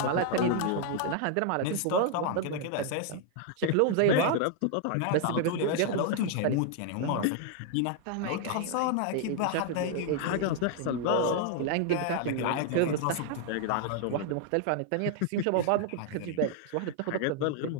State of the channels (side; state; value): both; different; correlation 0.00